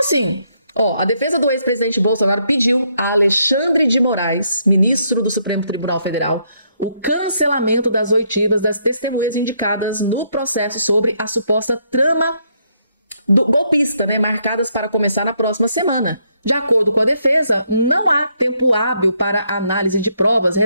ó, a defesa do ex-presidente Bolsonaro pediu a Alexandre de Moraes, ministro do Supremo Tribunal Federal, o cancelamento das oitivas das testemunhas indicadas no processo sobre a suposta trama golpista, né, marcadas para começar na próxima semana. De acordo com a defesa, não há tempo hábil para análise de provas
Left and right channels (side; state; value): both; inverted; correlation -0.74